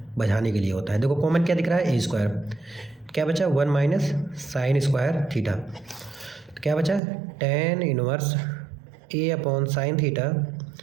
बझाने के लिए होता है। देखो कॉमन क्या दिख रहा है, a स्क्वायर, क्या बचा 1 माइनस साइन स्क्वायर थीटा, तो क्या बचा tan inverse a upon sine theta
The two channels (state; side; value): drops out; left; at 7.0 s